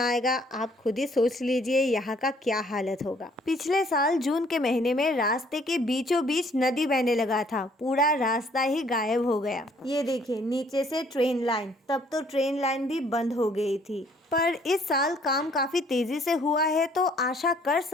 आप खुद ही सोच लीजिए यहाँ का क्या हालत होगा। पिछले साल जून के महीने में रास्ते के बीचों बीच नदी बहने लगा था, पूरा रास्ता ही गायब हो गया। ये देखिए नीचे से ट्रेन लाइन, तब तो ट्रेन लाइन भी बंद हो गई थी। पर इस साल काम काफ़ी तेज़ी से हुआ है तो आशा कर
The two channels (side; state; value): both; normal; correlation 0.62